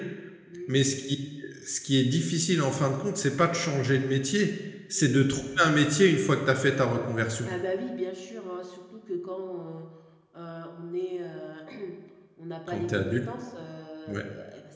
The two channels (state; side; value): identical; both; correlation 1.00